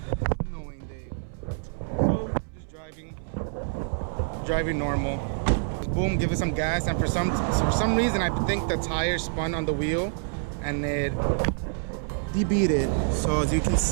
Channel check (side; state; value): left; silent; 60 dB below the other